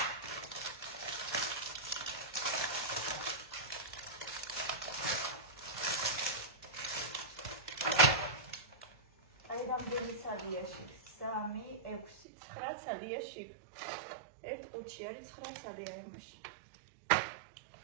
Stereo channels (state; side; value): drops out; left; at 12.2 s